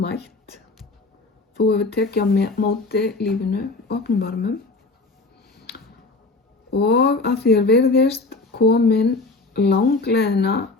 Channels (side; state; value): right; quieter; 3.5 dB